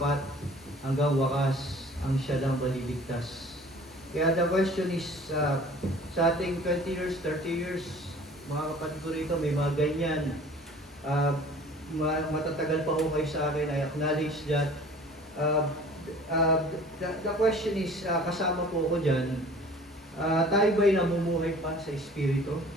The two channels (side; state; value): both; normal; correlation 0.48